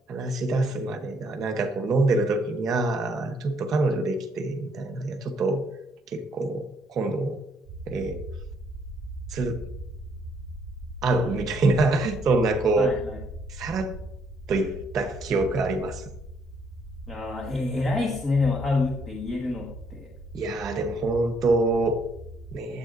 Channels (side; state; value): both; normal; correlation 0.69